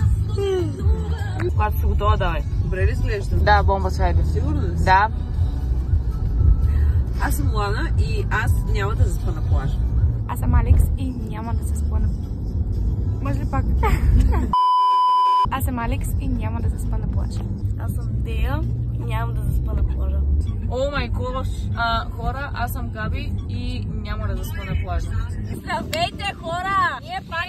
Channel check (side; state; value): both; identical; correlation 1.00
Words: Когато си готова, давай. Добре ли изглеждам? Да, бомба свайде. Сигурно ли си? Да. Аз съм Лана и аз няма да заспа на плажа. Аз съм Алекс и няма да заспа на... Може ли пак? Аз съм Алекс и няма да заспа на плажа. Аз съм Дея и нямам да заспа на плажа. О май гош! Хора, аз съм Габи и няма да заспа на плажа. Здравейте, хора! Ние